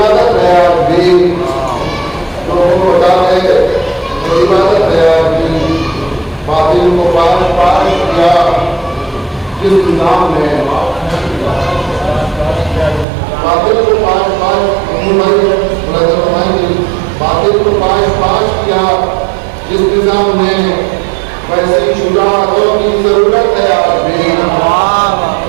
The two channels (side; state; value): left; drops out; at 13.1 s